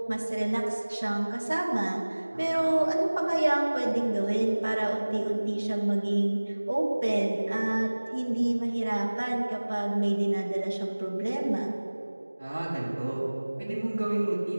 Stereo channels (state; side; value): inverted; both; correlation -1.00